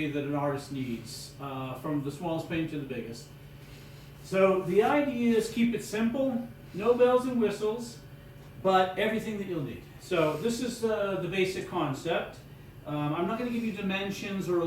that an artist needs, from the smallest paint to the biggest. So the idea is keep it simple, no bells and whistles, but everything that you'll need. So this is the basic concept. I'm not going to give you dimensions or a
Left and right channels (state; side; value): identical; both; correlation 1.00